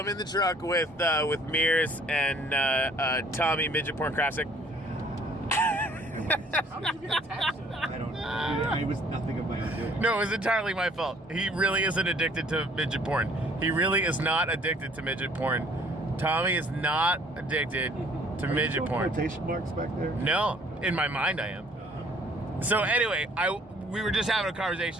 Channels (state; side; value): normal; both; correlation 0.58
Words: in the truck with Mears and Tommy, Midget Porn Classic. How did you get attached to that? I don't know. It was nothing of my own doing. No, it was entirely my fault. He really isn't addicted to midget porn. He really is not addicted to midget porn. Tommy is not addicted to midget porn. Quotation marks back there? No, in my mind I am. So anyway, we were just having a